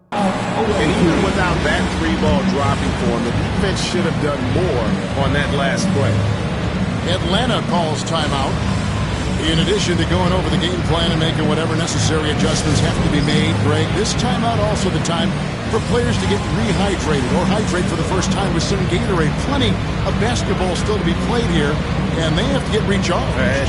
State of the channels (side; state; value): both; identical; correlation 1.00